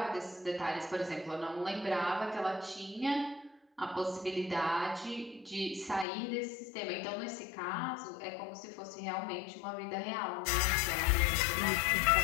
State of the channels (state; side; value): drops out; right; at 6.1 s